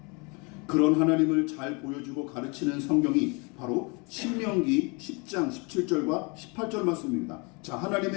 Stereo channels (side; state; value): right; quieter; 30.7 dB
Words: 그런 하나님을 잘 보여주고 가르치는 성경이 바로 신명기 10장 17절과 18절 말씀입니다. 자,